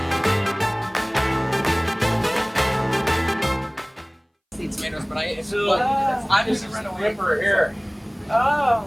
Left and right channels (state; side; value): identical; both; correlation 1.00